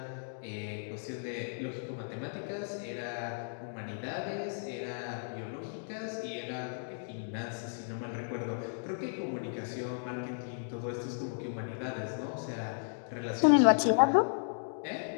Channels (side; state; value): right; silent; digital silence